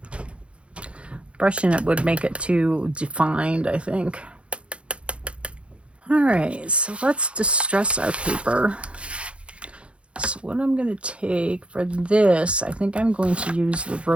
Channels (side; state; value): left; late; 0.060 ms